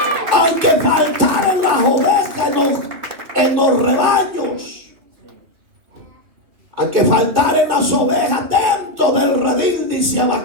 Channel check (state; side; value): late; left; 2.6 ms